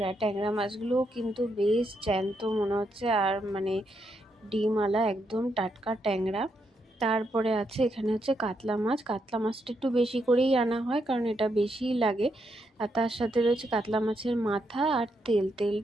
ট্যাংরা মাছগুলোও কিন্তু বেশ জ্যান্ত মনে হচ্ছে, আর মানে ডিমওয়ালা একদম টাটকা ট্যাংরা। তারপরে আছে এখানে হচ্ছে কাতলা মাছ। কাতলা মাছটা একটু বেশি করেই আনা হয়, কারণ এটা বেশিই লাগে। আর তার সাথে রয়েছে কাতলা মাছের মাথা আর তেল।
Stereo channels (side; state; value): both; normal; correlation 0.80